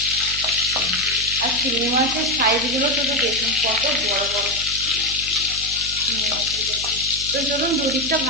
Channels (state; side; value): noise; right; hum, 13 dB below the sound